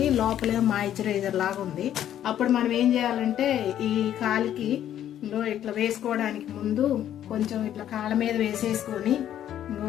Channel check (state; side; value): quieter; right; 11.0 dB